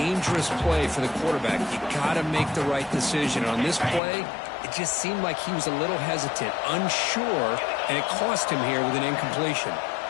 play for the quarterback. You got to make the right decision. On this play, it just seemed like he was a little hesitant, unsure, and it cost him here with an incompletion.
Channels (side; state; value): right; drops out; at 4.0 s